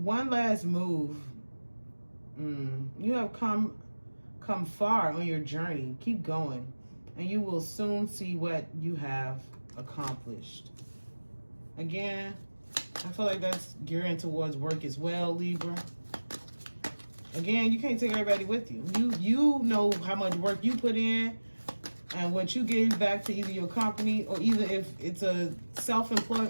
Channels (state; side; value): inverted; both; correlation -1.00